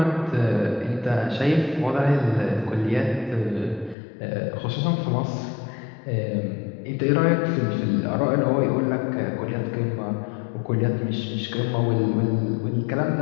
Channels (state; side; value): drops out; right; at 4.0 s